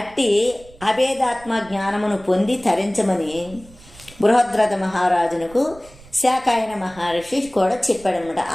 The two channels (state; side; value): noise; right; rumble, 23 dB below the sound